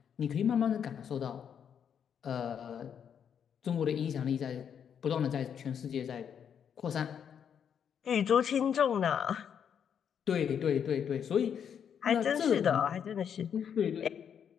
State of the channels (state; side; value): quieter; right; 8.0 dB